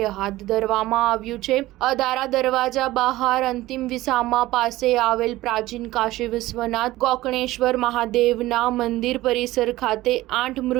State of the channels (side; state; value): left; quieter; 17.2 dB